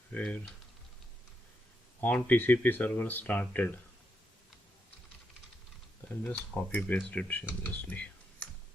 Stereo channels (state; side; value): normal; both; correlation 0.81